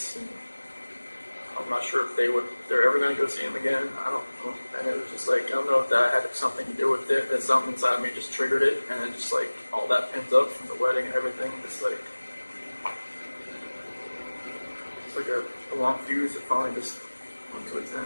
and I'm not sure if they're ever going to go see them again. I don't know. And it was just like, I don't know if that had something to do with it, that something inside me just triggered it, and then just like all that pent up from the wedding and everything, just like, it's like a long fuse that finally just went to its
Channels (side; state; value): both; inverted; correlation -1.00